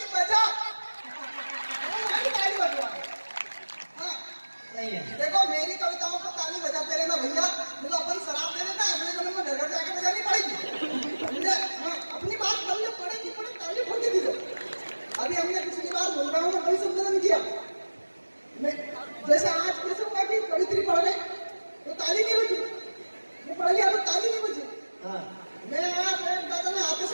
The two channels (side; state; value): both; inverted; correlation -1.00